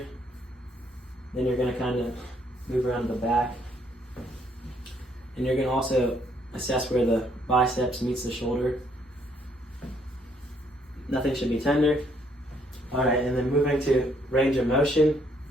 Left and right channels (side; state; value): both; normal; correlation 0.69